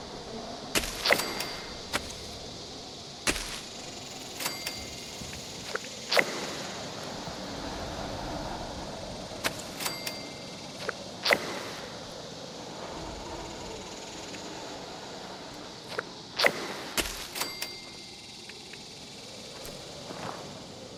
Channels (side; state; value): both; identical; correlation 1.00